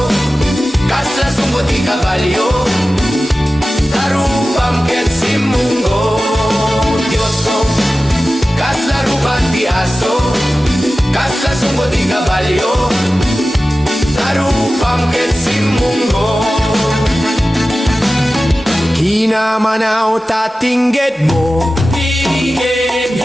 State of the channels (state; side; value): normal; both; correlation 0.95